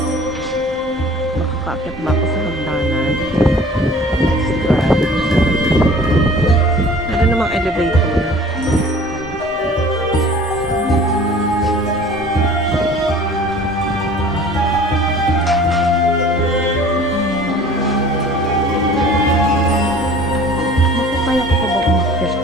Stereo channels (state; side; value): normal; both; correlation 0.47